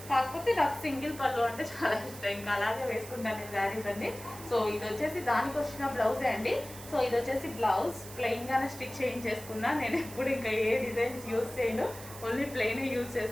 కాకపోతే నాకు సింగిల్ పళ్ళు అంటే చాలా ఇష్టం, ఇంకా అలాగే వేసుకుంటాను నేను శారీస్ అండి. సో ఇది వచ్చేసి దానికి వచ్చిన బ్లౌజే అండి. సో ఇది వచ్చేసి బ్లౌజ్ ప్లెయిన్గానే స్టిచ్ చేయించేసుకున్నా. నేను ఎప్పుడు ఇంకా ఏ డిజైన్స్ యూజ్ చేయను, ఓన్లీ ప్లెయిన్ యూజ్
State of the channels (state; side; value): noise; right; hiss, 15 dB below the sound